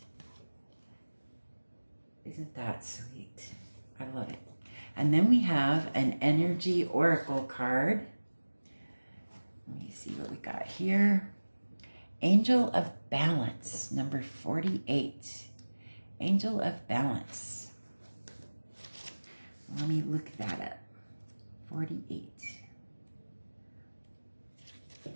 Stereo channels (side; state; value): both; inverted; correlation -1.00